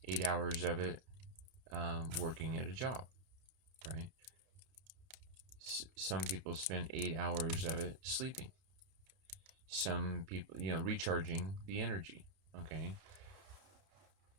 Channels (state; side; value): late; left; 32 ms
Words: 8 hours of it working at a job, right? Some people spend 8 hours of it sleeping. Some people, recharging the energy, okay?